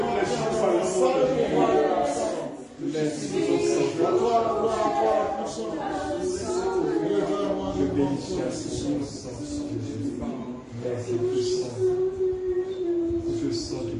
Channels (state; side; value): identical; both; correlation 1.00